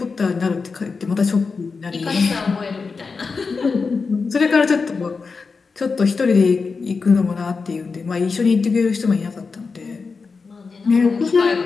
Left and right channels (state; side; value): quieter; right; 4.7 dB